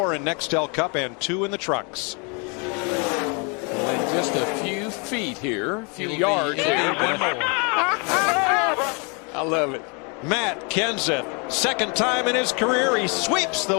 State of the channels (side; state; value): right; quieter; 33.6 dB